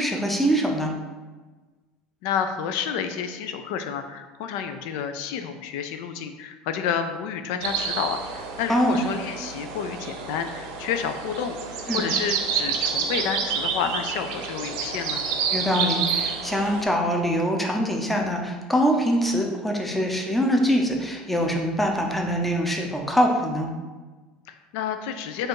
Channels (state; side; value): normal; both; correlation 0.47